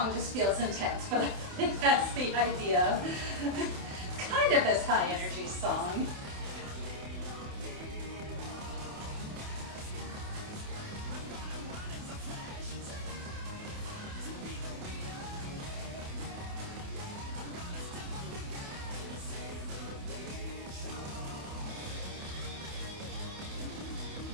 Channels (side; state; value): left; late; 28 ms